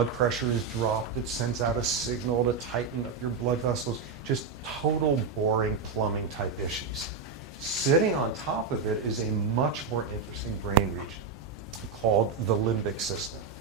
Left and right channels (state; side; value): quieter; left; 5.3 dB